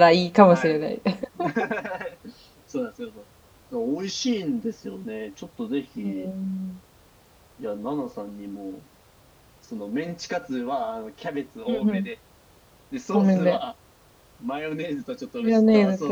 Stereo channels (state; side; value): identical; both; correlation 1.00